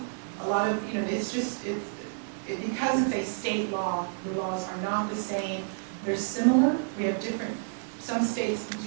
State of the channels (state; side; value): silent; left; 58 dB below the other